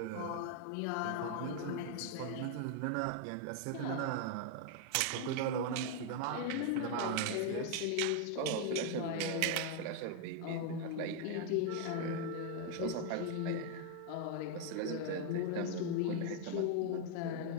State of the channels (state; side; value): different; both; correlation 0.00